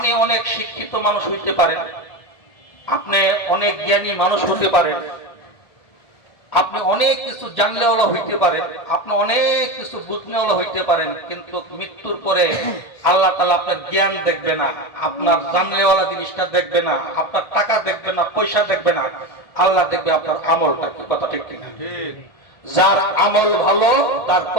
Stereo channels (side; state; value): right; late; 1.7 ms